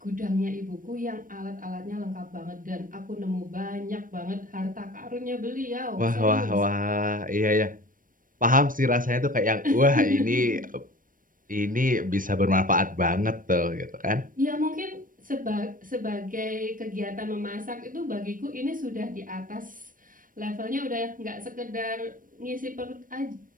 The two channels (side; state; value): left; late; 0.40 ms